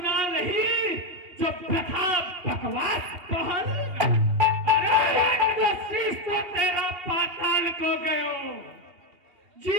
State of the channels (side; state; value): left; late; 2.8 ms